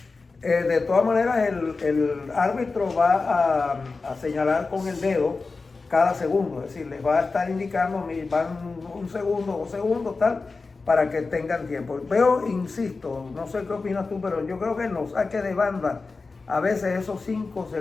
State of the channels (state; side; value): quieter; right; 4.0 dB